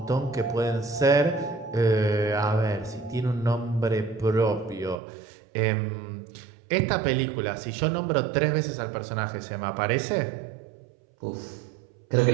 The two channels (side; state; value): left; drops out; at 5.0 s